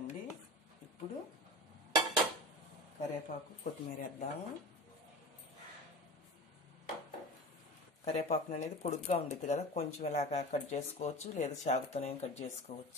ఇప్పుడు కరివేపాకు కొత్తిమీర వేద్దాము. కరివేపాకును అనేది పొడుగ్గా ఉండిద్ది కదా, కొంచెం ఇలాగా కట్ చేసుకోవచ్చు, లేదా చాకుతోనే కట్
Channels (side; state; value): both; normal; correlation 0.32